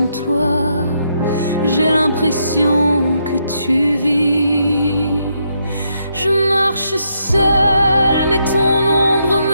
toi, j'ai l'impression que tu vis. Je marche seule, mais ton ombre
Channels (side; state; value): both; inverted; correlation -0.78